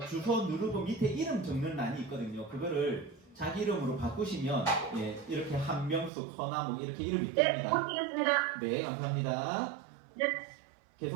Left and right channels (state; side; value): drops out; left; at 6.1 s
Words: 주소 누르고 밑에 이름 적는 란이 있거든요. 그거를 자기 이름으로 바꾸시면 예, 이렇게 한명숙, 허나목 이렇게 이름이 네. 뜹니다. 고치겠습니다. 네, 감사합니다. 네.